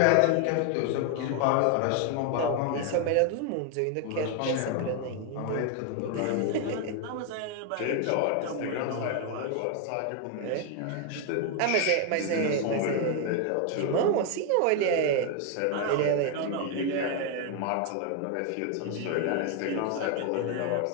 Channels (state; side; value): different; both; correlation 0.01